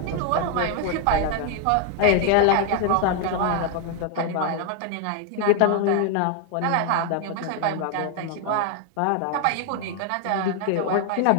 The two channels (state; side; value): different; both; correlation 0.00